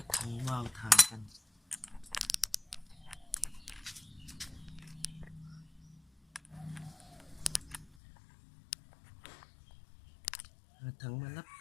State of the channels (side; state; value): right; drops out; at 8.0 s